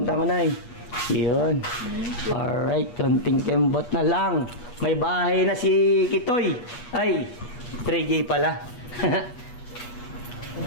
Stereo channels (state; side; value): late; right; 8.3 ms